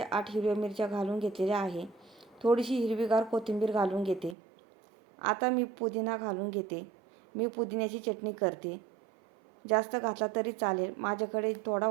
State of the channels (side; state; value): left; drops out; at 4.4 s